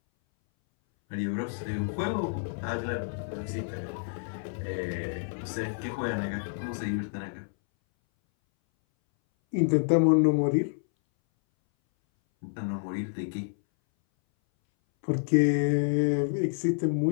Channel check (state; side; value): silent; right; 59 dB below the other